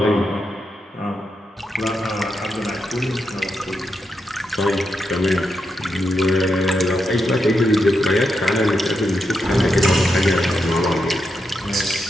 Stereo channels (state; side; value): normal; both; correlation 0.84